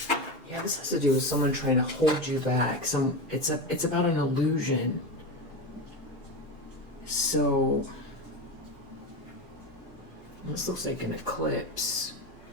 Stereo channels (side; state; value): both; normal; correlation 0.20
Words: Yeah, this has to do with someone trying to hold you back. It's about an illusion. So this looks like an eclipse.